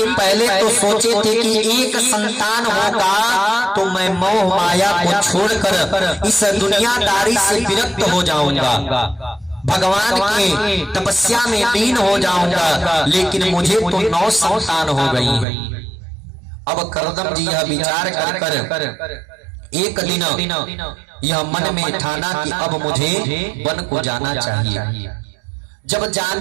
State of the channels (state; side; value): drops out; left; at 15.5 s